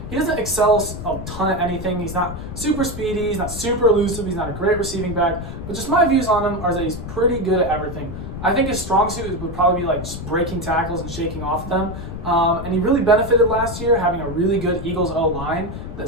He doesn't excel a ton at anything. He's not super speedy. He's not super elusive. He's not a great receiving back. But just my views on him are that he's pretty good at everything. I think his strong suit would probably be like just breaking tackles and shaking off them. And he really benefited last year having a really good Eagles O-line that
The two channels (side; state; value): left; noise; rumble, 8 dB below the sound